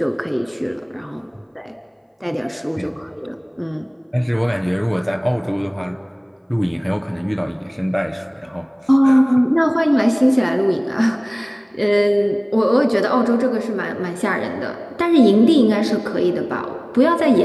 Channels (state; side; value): identical; both; correlation 1.00